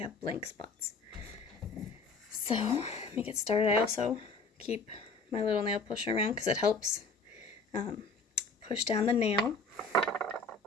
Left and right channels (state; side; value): quieter; right; 3.8 dB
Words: blank spots. So let me get started. I also keep my little nail pusher around because it helps push down the nail.